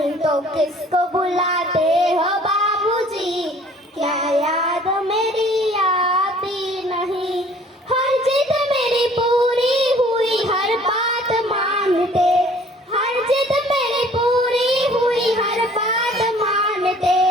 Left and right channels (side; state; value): both; normal; correlation 0.54